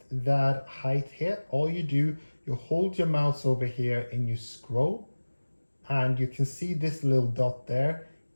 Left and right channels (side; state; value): both; inverted; correlation -1.00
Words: that height here. All you do, you hold your mouse over here and you scroll, and you can see this little dot there.